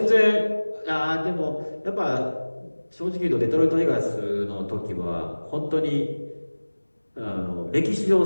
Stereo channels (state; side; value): inverted; both; correlation -1.00